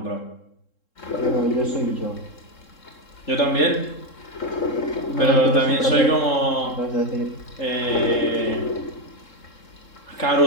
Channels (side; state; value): right; late; 3.7 ms